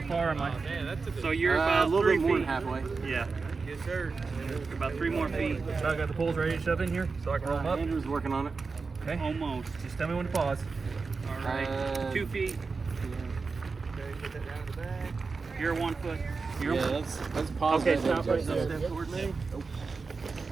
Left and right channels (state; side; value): quieter; left; 4.5 dB